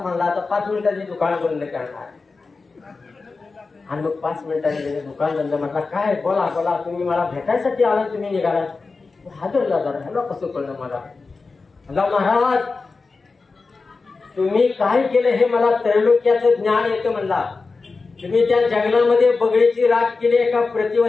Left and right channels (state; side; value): quieter; right; 4.1 dB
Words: म्हणला. आता 5 मिनिटांनी दुकान बंद करणार. आणि मग 5 मिनिटांनी दुकान बंद म्हटला, काय बोला बोला, तुम्ही मला भेटायसाठी आला, तुम्ही निघाला. हादरला जरा, ह्याला कसं कळलं मला. म्हणला महाराज तुम्ही काय केलं हे मला त्रैलोक्याचं ज्ञान येतं म्हणला. तुम्ही त्या जंगलामध्ये बगळीची राख केली, एका